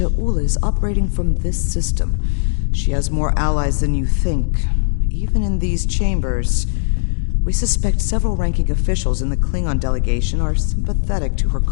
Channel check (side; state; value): right; silent; digital silence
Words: is operating from this system. She has more allies than you think, even in these chambers. We suspect several ranking officials in the Klingon delegation are sympathetic to her